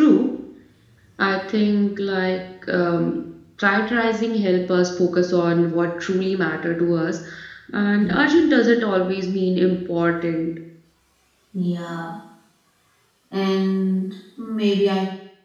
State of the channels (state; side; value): identical; both; correlation 1.00